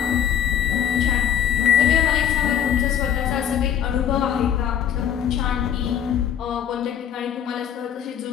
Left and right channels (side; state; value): right; quieter; 9.3 dB